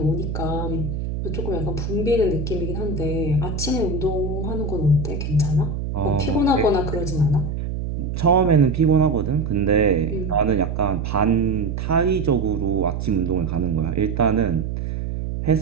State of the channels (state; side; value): noise; right; hum, 4 dB below the sound